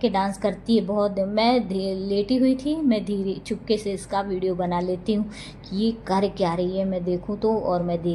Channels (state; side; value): identical; both; correlation 1.00